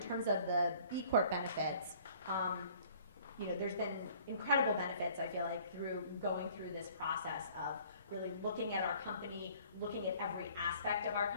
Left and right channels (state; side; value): inverted; both; correlation -0.54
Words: terms of the B Corp benefits, there's been incredible benefits, I feel like, through going through this process of really looking at our company, looking at every aspect of our